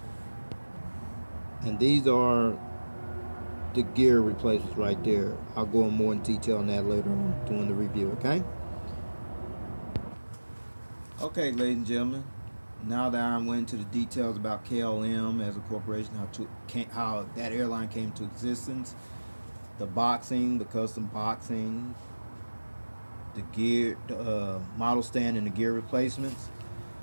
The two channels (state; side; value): inverted; both; correlation -1.00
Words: And these are the gear replacements right there. I'll go in more in detail on that later on during the review, okay? Okay, ladies and gentlemen, now that I went into the details about KLM as a corporation, how that airline came to existence, the boxing, the custom boxing, the gear, the model stand and the gear replacements,